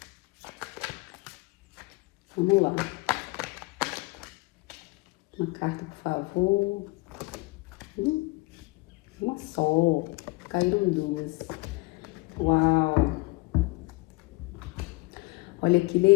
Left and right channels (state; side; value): quieter; right; 24.0 dB